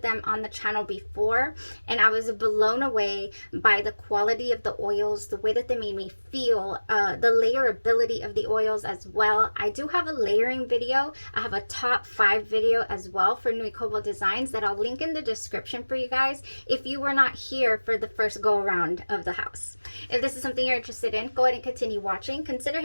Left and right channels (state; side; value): inverted; both; correlation -1.00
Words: them on the channel before and I was blown away by the quality of the oils, the way that they made me feel, the layerability of the oils as well. I do have a layering video. I have a top 5 video as well for Nui Cobalt Designs that I'll link in the description for you guys if you were not here for the first go around of the house. If this is something you're interested in, go ahead and continue watching. Consider